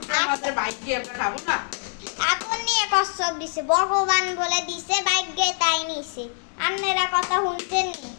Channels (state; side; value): silent; right; 62 dB below the other